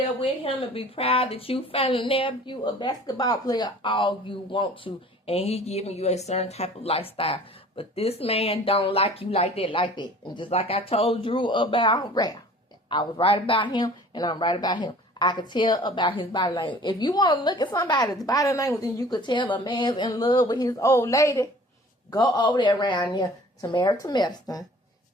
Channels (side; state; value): both; normal; correlation 0.48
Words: with him and be proud that you finally nabbed you a basketball player all you want to, and he giving you a certain type of lifestyle. But this man don't like you like that. And just like I told Drew about Rhoa, I was right about him, and I'm right about him. I could tell about his body language. If you want to look at somebody's body language and you could tell a man's in love with his old lady, go over there around here to Medicine